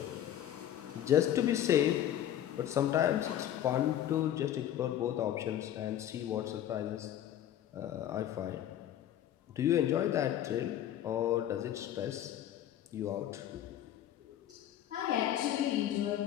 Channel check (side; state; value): right; quieter; 11.3 dB